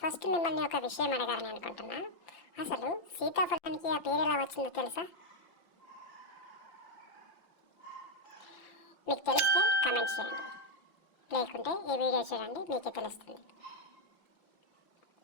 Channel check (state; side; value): late; right; 5.8 ms